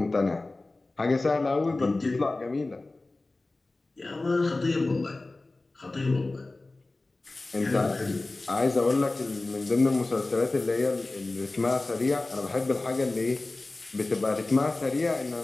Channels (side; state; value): right; quieter; 3.1 dB